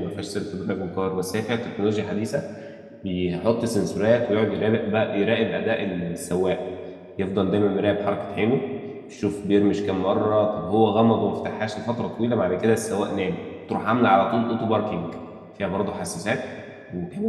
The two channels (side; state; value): both; identical; correlation 1.00